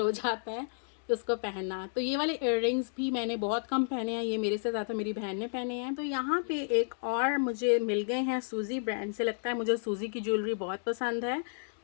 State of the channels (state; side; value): silent; right; digital silence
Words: हो जाता है। उसको पहनना। तो ये वाले इयररिंग्स भी मैंने बहुत कम पहने हैं, ये मेरे से ज़्यादा मेरी बहन ने पहने हैं। तो यहाँ पे एक और मुझे मिल गए हैं सूजी ब्रांड से। लगता है मुझे सूजी की ज्वेलरी बहुत पसंद है।